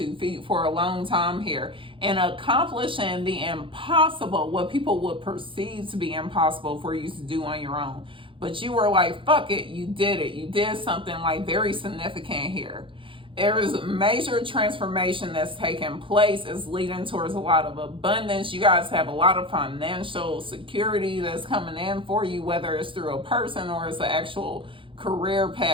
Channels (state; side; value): late; left; 0.25 ms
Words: feet for a long time here, and accomplishing the impossible, what people would perceive to be impossible for you to do on your own. But you were like, fuck it, you did it. You did something like very significant here. There is a major transformation that's taking place. It's leading towards a lot of abundance. You guys have a lot of financial security that's coming in for you, whether it's through a person or it's the actual career